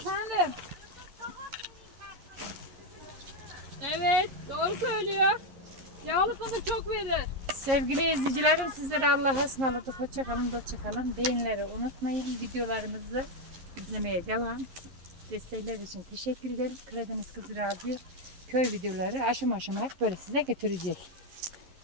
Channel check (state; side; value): late; left; 11 ms